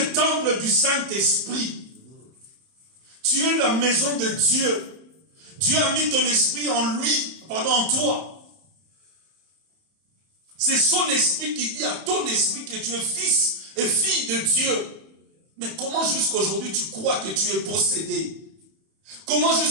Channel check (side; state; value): left; late; 31 ms